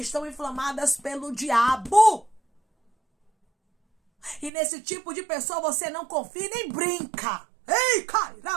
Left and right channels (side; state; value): left; drops out; at 4.5 s